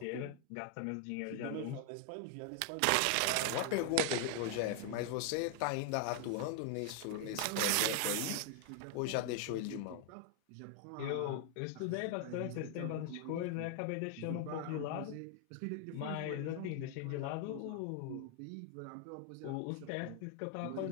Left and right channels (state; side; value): different; both; correlation 0.00